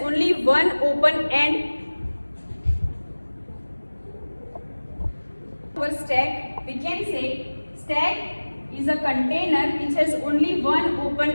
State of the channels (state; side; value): inverted; both; correlation -1.00